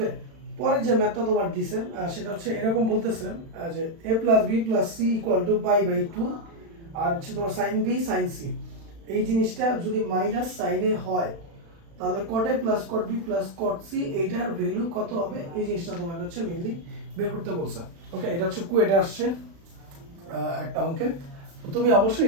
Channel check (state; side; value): late; left; 36 ms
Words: পরে যে ম্যাথটা তোমার দিছে সেটা হচ্ছে এরকম বলতেছে যে a plus b plus c equal to pi by 2 আর হচ্ছে তোমার sin b sin c, এই জিনিসটা যদি মাইনাস sin a হয় তাহলে cot a plus cot b plus cot c এইটার ভ্যালু কত হবে, এই জিনিসটা তোমাকে হচ্ছে মেইনলি বের করতে বলছে। ওকে, এটা হচ্ছে কুয়েটে আসছে একটা অঙ্কে। তুমি